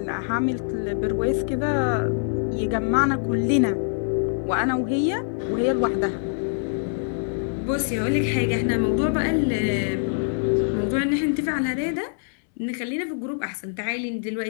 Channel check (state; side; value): silent; right; 62 dB below the other